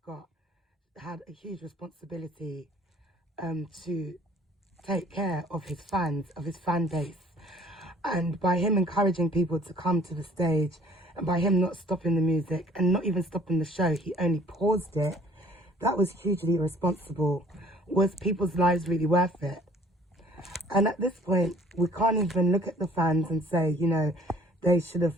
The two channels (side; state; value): both; normal; correlation 0.56